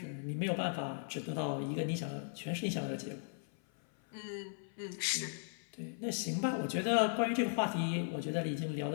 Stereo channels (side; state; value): right; silent; 53 dB below the other